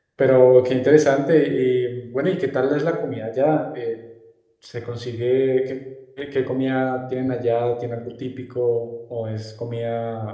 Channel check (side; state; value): both; identical; correlation 1.00